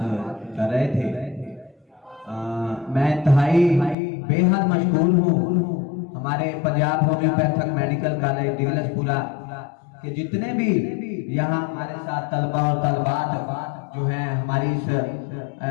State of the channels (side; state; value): right; drops out; at 4.0 s